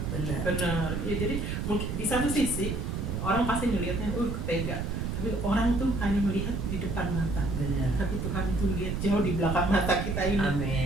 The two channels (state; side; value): noise; right; rumble, 2 dB below the sound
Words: sendiri. Benar. Ya, jadi mungkin di satu sisi orang pasti melihatnya, tega. Tapi orang tuh hanya melihat di depan mata. Benar. Tapi Tuhan itu lihat jauh di belakang mata kita ini.